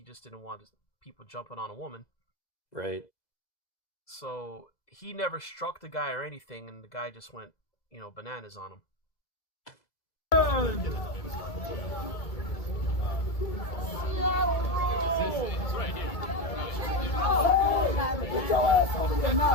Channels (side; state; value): right; late; 2.0 ms